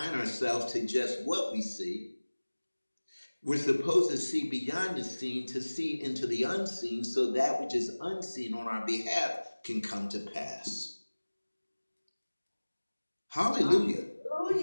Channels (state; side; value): inverted; both; correlation -1.00